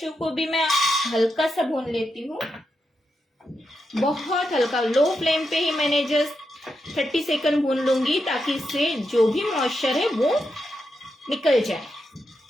को भी मैं हल्का सा भून लेती हूँ, बहुत हल्का। लो फ्लेम पे ही मैंने जस्ट 30 सेकंड भून लूंगी ताकि इससे जो भी मॉइस्चर है वो निकल जाए।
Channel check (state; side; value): normal; both; correlation 0.85